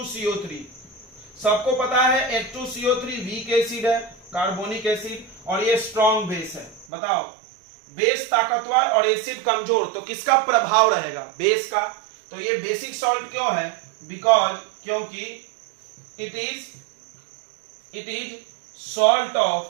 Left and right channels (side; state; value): left; drops out; at 6.9 s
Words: सबको पता है H2CO3 वीक एसिड है, कार्बोनिक एसिड, और ये स्ट्रॉन्ग बेस है। बताओ, बेस ताकतवर और एसिड कमजोर, तो किसका प्रभाव रहेगा? बेस का। तो ये बेसिक सॉल्ट क्यों है? बिकॉज, क्योंकि it is salt